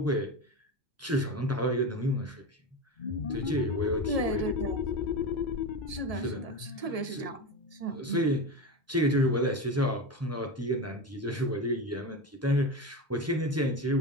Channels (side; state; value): both; normal; correlation 0.21